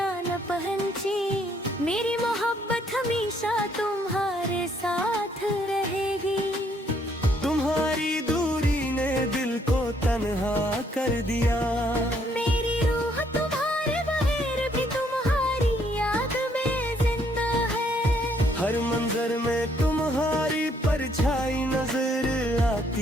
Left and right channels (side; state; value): both; normal; correlation 0.68